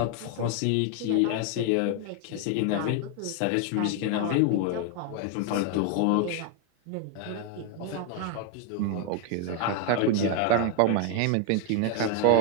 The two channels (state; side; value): different; both; correlation 0.01